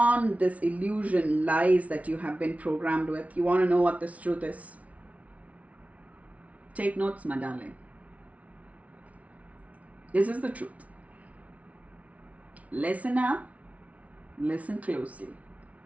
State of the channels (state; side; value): late; left; 0.067 ms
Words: this illusion, lies that you have been programmed with. You want to know what this truth is? Take notes, my darling. This is the truth. Listen up. Listen closely.